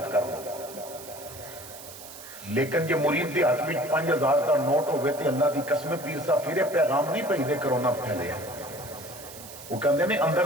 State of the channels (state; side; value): noise; right; hiss, 15 dB below the sound